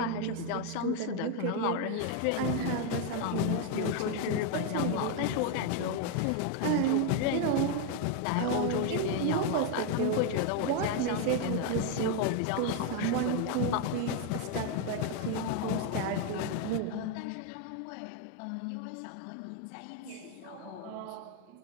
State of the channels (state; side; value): different; both; correlation 0.01